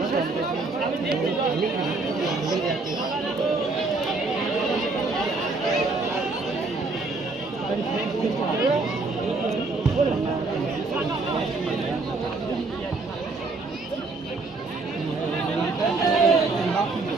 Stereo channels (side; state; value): left; quieter; 3.5 dB